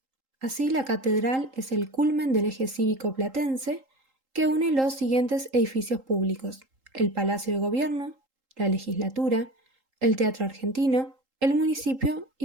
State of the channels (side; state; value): left; late; 3.8 ms